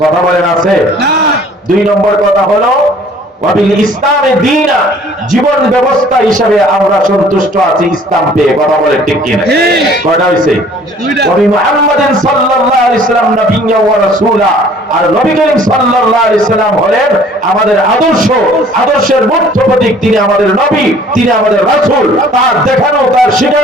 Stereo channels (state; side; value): normal; both; correlation 0.54